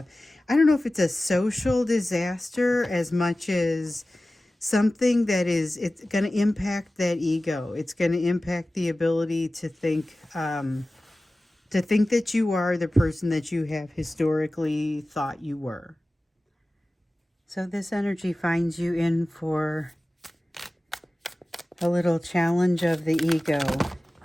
I don't know if it's a social disaster as much as something that is, it's going to impact that ego. It's going to impact the ability to think that you are the person that you have historically thought you were. So this energy finds you in for a little challenge of the ego.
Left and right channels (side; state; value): both; normal; correlation 0.96